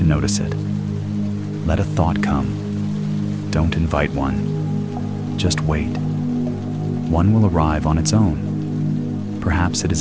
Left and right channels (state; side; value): identical; both; correlation 1.00